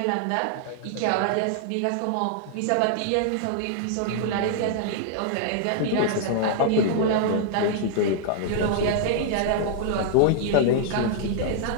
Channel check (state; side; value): different; both; correlation -0.01